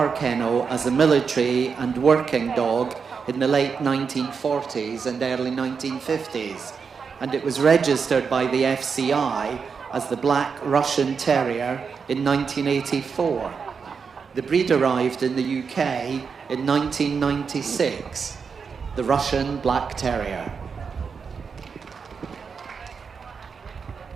Kennel as a military and working dog in the late 1940s and early 1950s, and it was registered by the FCI as the Black Russian Terrier in 1984. The breed arrived in the UK in 1996, the Russian Black Terrier.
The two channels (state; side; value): quieter; left; 5.8 dB